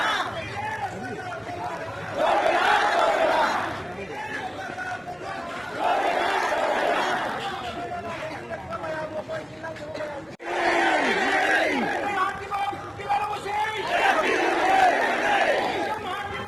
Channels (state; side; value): identical; both; correlation 1.00